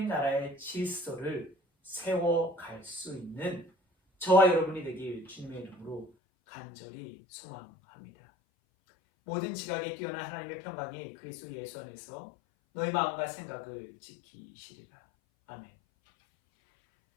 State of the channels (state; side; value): drops out; right; at 6.1 s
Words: 나라의 질서를 세워갈 수 있는 저와 여러분이 되길 주님의 이름으로 간절히 소망합니다. 모든 지각에 뛰어난 하나님의 평강이 그리스도 예수 안에서 너희 마음과 생각을 지키시리라. 아멘.